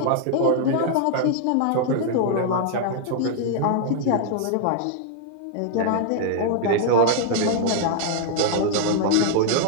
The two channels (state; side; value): different; both; correlation 0.00